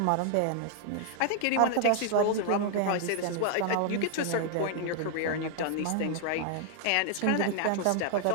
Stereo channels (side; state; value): both; different; correlation 0.00